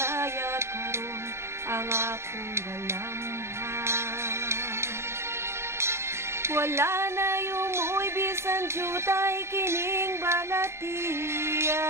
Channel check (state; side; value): late; left; 0.13 ms